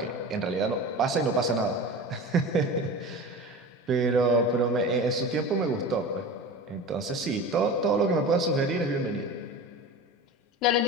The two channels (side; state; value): both; normal; correlation 0.32